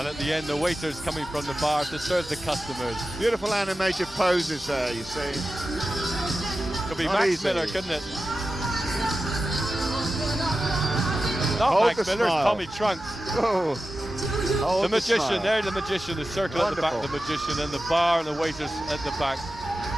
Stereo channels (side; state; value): both; normal; correlation 0.93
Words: at the end, the waiters coming from the bar to serve the customers. Beautiful animated poses there, you see. Could be Not Max easy. Miller, couldn't it? Not Hold Max the Miller, it's smile. Tommy Trunks. Oh. Hold The magician, smile. there the magician, the circle at the back, the Wonderful. magician, and the bar and the waiters at the back.